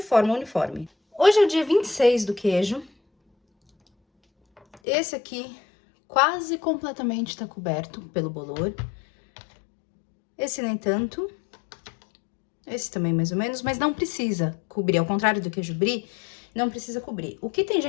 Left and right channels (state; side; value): drops out; right; at 4.8 s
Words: uniforme. Hoje é o dia 26 do queijo. Esse aqui quase completamente tá coberto pelo bolor. Esse nem tanto. Esse também mais ou menos, mas não precisa cobrir. Ao contrário do queijo brie, não precisa cobrir. O que tem